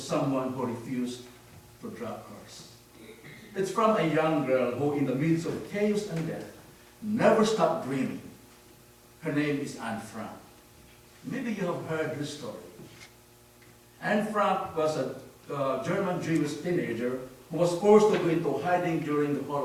who refused to drop hers. It's from a young girl who, in the midst of chaos and death, never stopped dreaming. Her name is Anne Frank. Maybe you have heard her story. Anne Frank was a German Jewish teenager who was forced to go into hiding during the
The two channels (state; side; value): identical; both; correlation 1.00